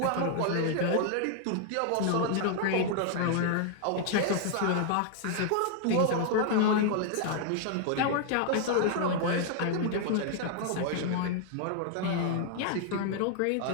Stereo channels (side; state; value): both; different; correlation 0.00